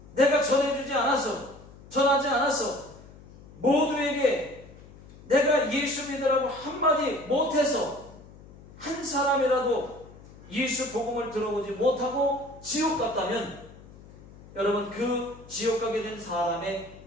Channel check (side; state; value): left; noise; hum, 21 dB below the sound